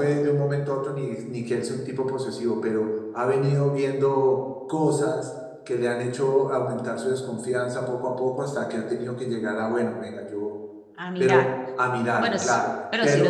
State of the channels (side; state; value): both; identical; correlation 1.00